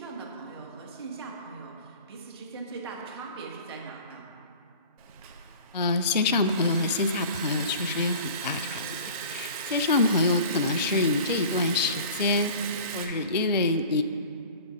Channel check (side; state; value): both; inverted; correlation -0.41